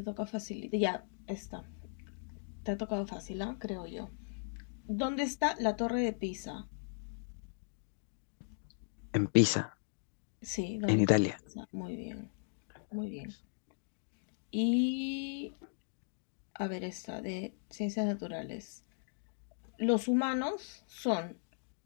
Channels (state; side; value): silent; right; digital silence